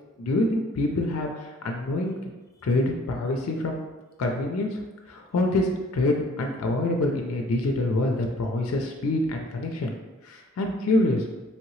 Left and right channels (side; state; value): both; normal; correlation 0.57